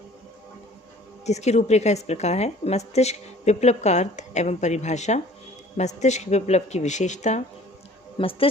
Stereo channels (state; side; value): normal; both; correlation 0.51